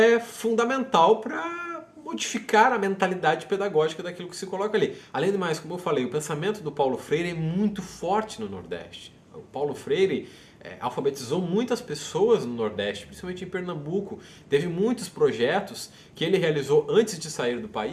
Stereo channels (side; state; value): both; identical; correlation 1.00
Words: fundamental para modificar a mentalidade pedagógica daquilo que se coloca ali. Além do mais, como eu falei, o pensamento do Paulo Freire é muito forte no Nordeste. O Paulo Freire alfabetizou muitas pessoas no Nordeste, principalmente em Pernambuco. Teve muitos projetos que ele realizou antes de sair do